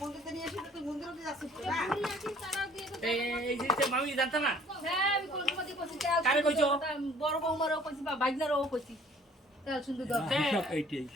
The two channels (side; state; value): both; normal; correlation 0.55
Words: এই যে মামি জানতা না হ্যাঁ আমি কোন সময় দিয়ে করছি তেল কারে কইছো? বড় বৌমারও করছি বা বাইজনারও করছি তেল সুন্দর দরকার। হিসাব এইটাই